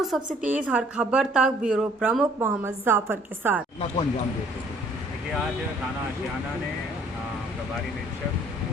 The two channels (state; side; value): normal; both; correlation 0.59